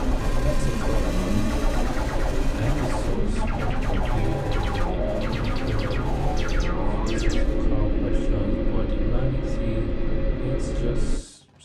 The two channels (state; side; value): identical; both; correlation 1.00